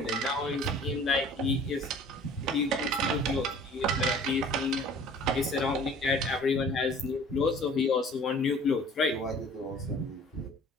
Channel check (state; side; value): normal; both; correlation 0.49